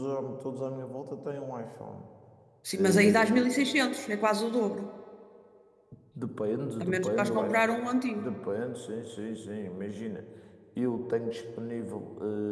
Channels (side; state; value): both; identical; correlation 1.00